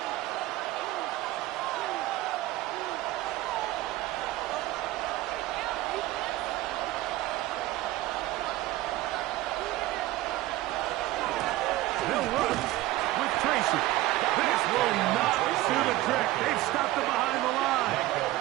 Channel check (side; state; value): left; quieter; 16.8 dB